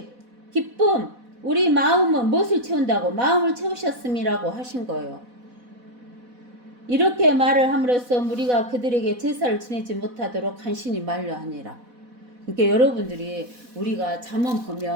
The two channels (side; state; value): left; late; 4.1 ms